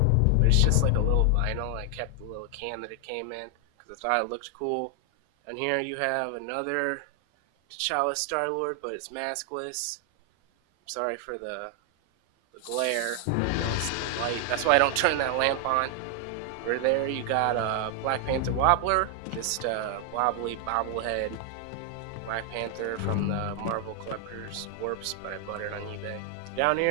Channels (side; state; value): both; different; correlation 0.00